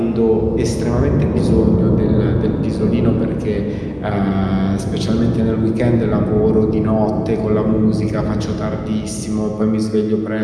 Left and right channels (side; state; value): both; identical; correlation 1.00